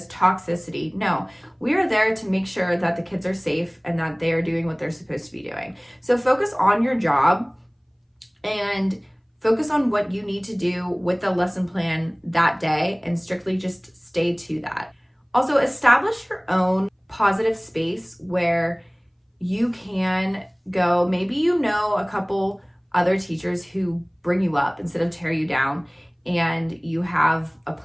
toxicity. No, we are there to make sure that the kids are safe and that they are doing what they're supposed to be doing. So focus on your job and focus on what you need to do with the lesson plan that day and strictly just stay to that. Also, establish your own positive space where you can go. Maybe you know a couple other teachers who bring you up instead of tear you down, and you have a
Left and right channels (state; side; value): identical; both; correlation 1.00